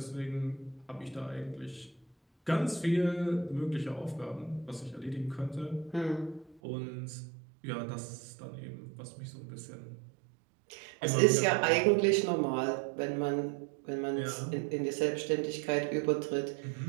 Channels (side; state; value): left; drops out; at 6.6 s